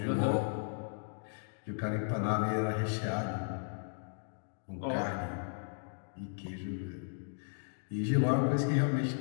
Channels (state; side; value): silent; right; digital silence